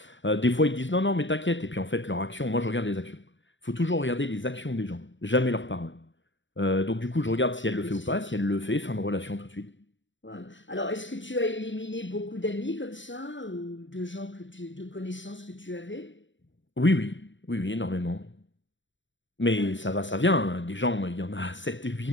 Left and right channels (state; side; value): late; right; 0.55 ms